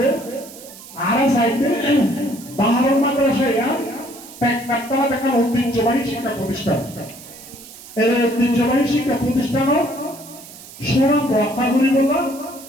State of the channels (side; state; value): right; noise; hiss, 17 dB below the sound